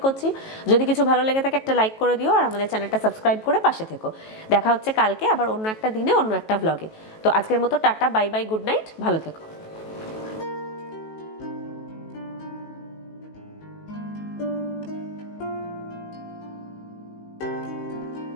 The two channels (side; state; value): right; late; 18 ms